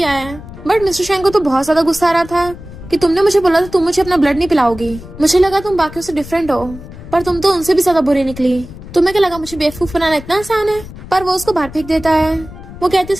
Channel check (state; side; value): noise; left; rumble, 15 dB below the sound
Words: है। बट मिस्टर शेंग को तो बहुत ज्यादा गुस्सा आ रहा था कि तुमने मुझे बोला था तुम मुझे अपना ब्लड नहीं पिलाओगी, मुझे लगा तुम बाकियों से डिफरेंट हो, पर तुम तो उनसे भी ज्यादा बुरी निकली। तुम्हें क्या लगा मुझे बेवकूफ बनाना इतना आसान है। पर वो उसको बाहर फेंक देता है। वो कहती